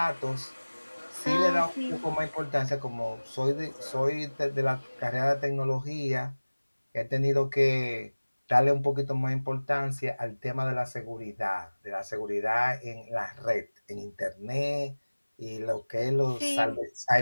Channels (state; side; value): inverted; both; correlation -1.00